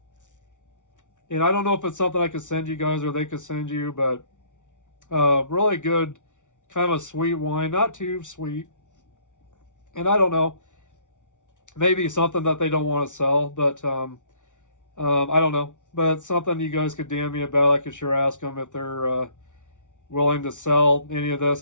And I don't know if it's something I could send you guys or they could send you, but really good, kind of a sweet wine, not too sweet. And I don't know, maybe something that they don't want to sell, but I don't know. But it's something you guys could DM me about. I could sure ask them if they're willing to sell any of this.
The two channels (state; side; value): late; right; 0.86 ms